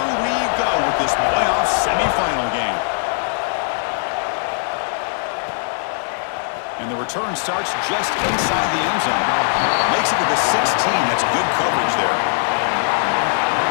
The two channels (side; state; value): right; silent; digital silence